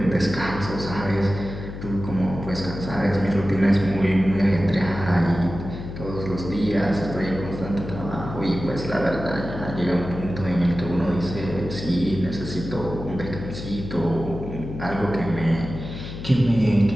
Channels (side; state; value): left; noise; hum, 9 dB below the sound